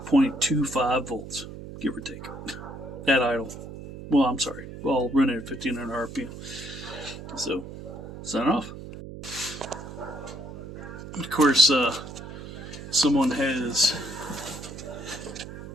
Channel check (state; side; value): noise; right; hum, 11 dB below the sound